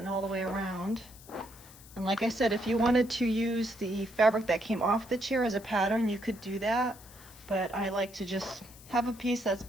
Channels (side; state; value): left; noise; hiss, 20 dB below the sound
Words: all the way around. And like I said, if you wanted to use the fabric that came off the chair as a pattern, you could do that, but I like to just have a piece that's